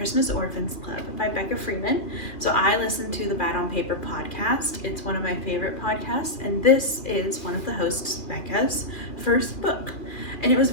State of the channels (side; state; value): right; late; 2.4 ms